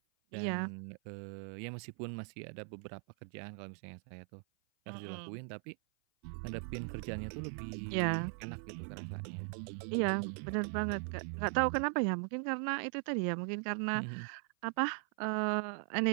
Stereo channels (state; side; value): silent; left; 52 dB below the other